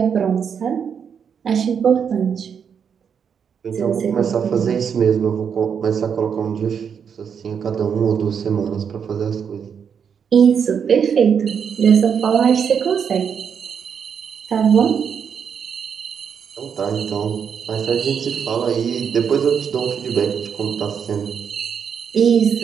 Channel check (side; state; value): left; quieter; 7.2 dB